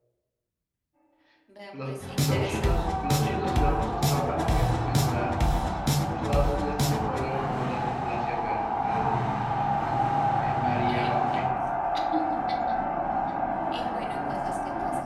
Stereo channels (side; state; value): both; identical; correlation 1.00